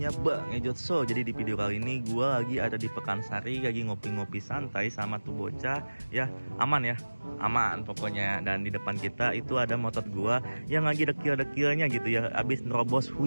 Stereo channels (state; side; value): inverted; both; correlation -1.00